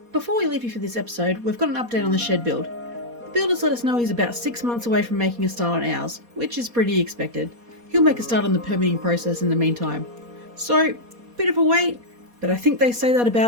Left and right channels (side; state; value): left; late; 4.2 ms